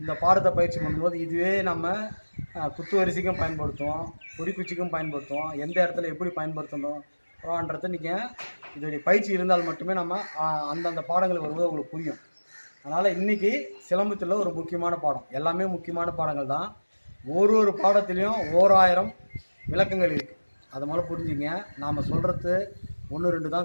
பாடத்தை பயிற்சி பண்ணும்போது இதுவே நம்ம குத்து வரிசைக்கும் பயன்படுத்துவோம், குறிக்குச்சிக்கும் பயன்படுத்துவோம். எந்த இடத்துல எப்படி பயன்படுத்தணும்ன்றது நீங்கள் இதோடைய பயிற்சி இருந்தால் மட்டுமே நம்ம அந்தந்த பாடங்கள் வரும்போது உங்களுக்கு புரியும். அதனால் இன்றைக்கி சிலம்பத்தில் ஒரு முக்கியமான பாடம், எல்லாமே முக்கியமான பாடங்கள் தான். ஒரு பாடத்துலேயும் 1000 விளக்கங்கள் இருக்குது. அதை முதல்ல புரிஞ்சுங்க. நாம் சொல்கிறது 1 2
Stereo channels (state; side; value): inverted; both; correlation -1.00